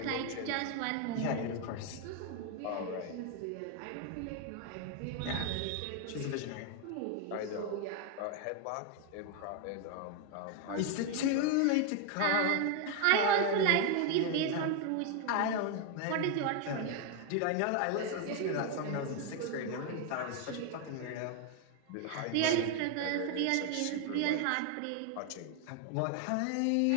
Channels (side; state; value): both; different; correlation 0.01